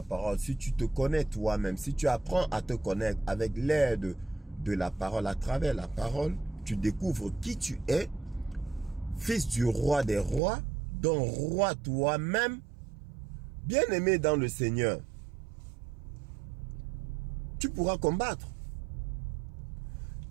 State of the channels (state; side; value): drops out; left; at 10.4 s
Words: parole, si tu te connais toi-même, si tu apprends à te connaître avec l'aide de la parole, à travers la parole, tu découvres qui tu es, fils du roi des rois, dont roi toi-même, bien-aimé dans le Seigneur, tu pourras combattre.